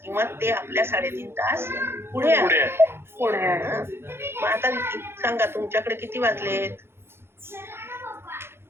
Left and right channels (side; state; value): left; late; 0.12 ms